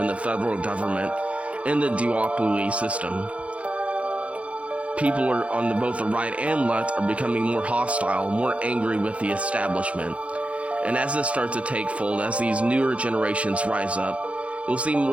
the federal government and the duopoly system. People are on both the right and left are becoming more hostile, more angry with the establishment. And as this starts to take fold, as these newer generations rise up, you'll see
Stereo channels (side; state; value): left; late; 0.063 ms